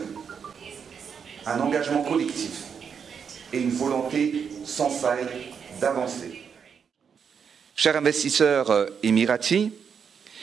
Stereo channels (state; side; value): quieter; left; 6.8 dB